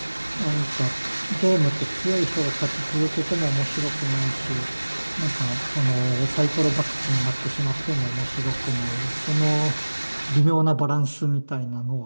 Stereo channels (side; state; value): both; inverted; correlation -1.00